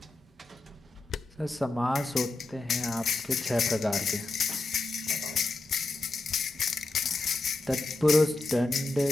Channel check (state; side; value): quieter; right; 3.1 dB